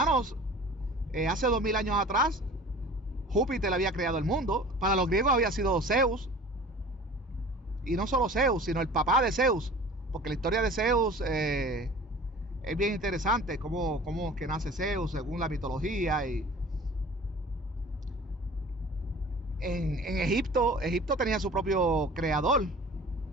hace 2000 años atrás, Júpiter había creado el mundo. Para los griegos había sido Zeus. Y no solo Zeus, sino el papá de Zeus. Porque la historia de Zeus es bien interesante. Cómo es que nace Zeus según la mitología. Y en Egipto tenía su propio creador.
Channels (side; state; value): both; normal; correlation 0.43